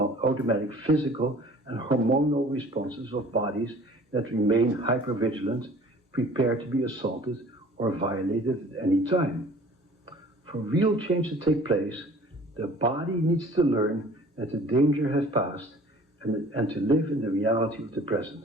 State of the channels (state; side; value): normal; both; correlation 0.49